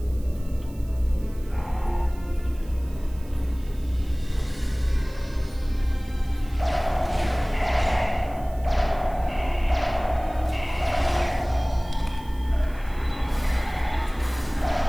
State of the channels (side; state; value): right; noise; hiss, 25 dB below the sound